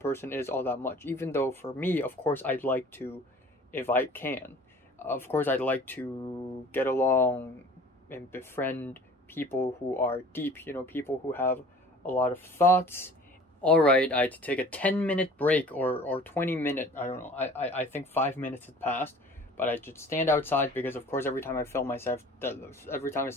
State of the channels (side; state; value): both; normal; correlation 0.47